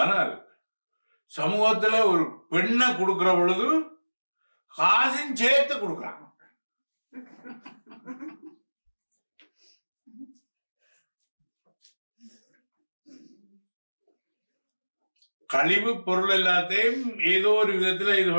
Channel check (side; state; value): both; inverted; correlation -1.00